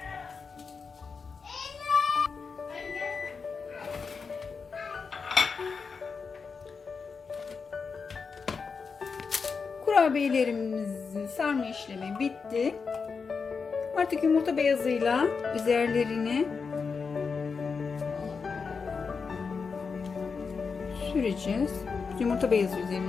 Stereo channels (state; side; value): quieter; right; 5.2 dB